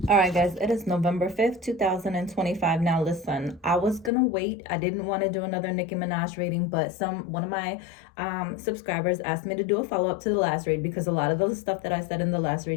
All right, guys, it is November 5th, 2025. Now, listen, I was gonna wait. I didn't want to do another Nicki Minaj reading, but one of my subscribers asked me to do a follow up to the last read because a lot of the stuff that I said in the last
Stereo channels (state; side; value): drops out; right; at 4.1 s